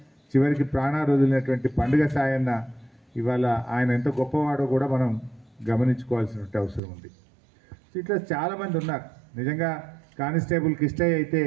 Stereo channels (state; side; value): drops out; left; at 6.8 s